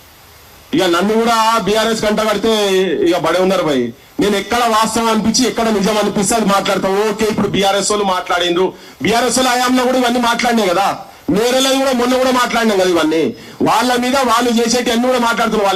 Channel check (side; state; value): both; identical; correlation 1.00